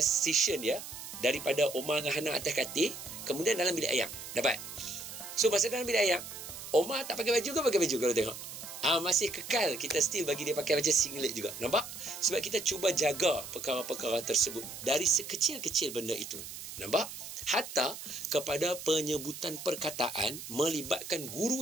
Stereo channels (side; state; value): right; noise; hiss, 10 dB below the sound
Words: dia daripada Omar dengan Hana atas katil, kemudian dalam bilik ayam. Dapat? So, masa dalam bilik ayam, Omar tak pakai baju ke pakai baju kalau tengok? Masih kekal, kita still bagi dia pakai macam singlet juga. Nampak? Sebab kita cuba jaga perkara-perkara tersebut dari sekecil-kecil benda itu. Nampak? Hatta kepada penyebutan perkataan melibatkan